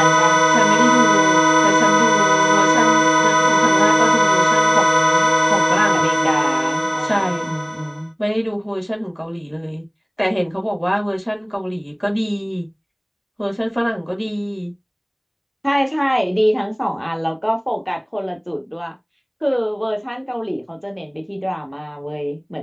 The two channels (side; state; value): both; identical; correlation 1.00